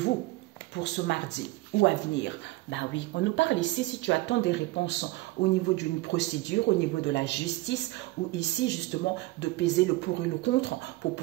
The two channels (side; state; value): left; quieter; 19.7 dB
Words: pour ce mardi ou à venir. Ben oui, on nous parle ici, si tu attends des réponses au niveau d'une procédure, au niveau de la justice, ou ici justement de peser le pour et le contre pour